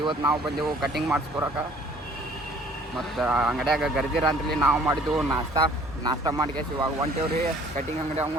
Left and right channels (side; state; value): both; normal; correlation 0.55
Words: ಇವತ್ತು ನಾವು ಬಂದೆವು ಕಟಿಂಗ್ ಮಾಡಿಸ್ಕೊರಕ ಮತ್ತು ಅಂಗಡಿಯಾಗ ಗರ್ದಿರ ಅಂತಲಿ ನಾವು ಮಾಡಿದ್ದೆವು ನಾಷ್ಟ ಮಾಡ್ಕೇಸಿ ಇವಾಗ ಹೊಂಟೇವ್ರಿ ಕಟಿಂಗ್ ಅಂಗಡಿ